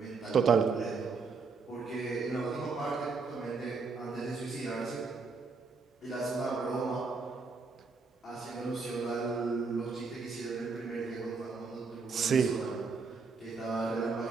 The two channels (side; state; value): left; quieter; 4.6 dB